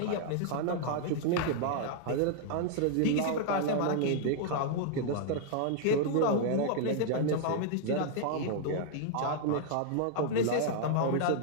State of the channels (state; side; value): different; both; correlation -0.01